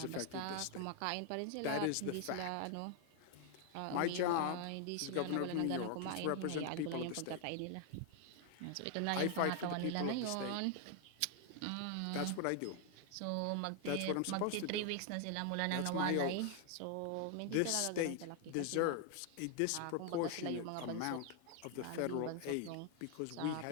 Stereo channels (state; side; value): different; both; correlation 0.00